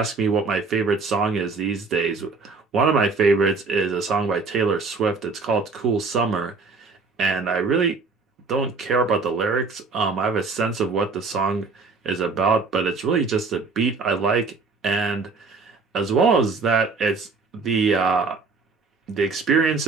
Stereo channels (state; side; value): quieter; left; 4.3 dB